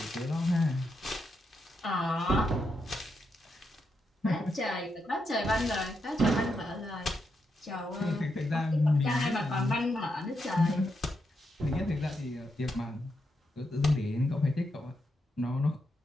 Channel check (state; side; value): normal; both; correlation 0.83